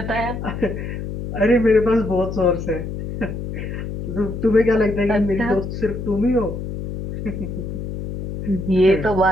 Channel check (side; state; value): left; noise; hum, 6 dB below the sound